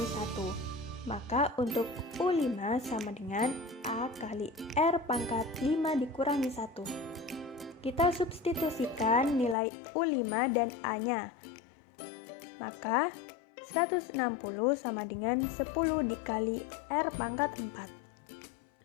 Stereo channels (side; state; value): right; drops out; at 9.6 s